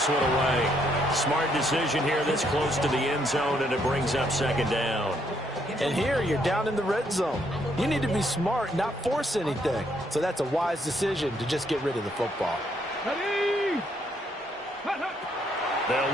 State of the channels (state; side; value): normal; both; correlation 0.72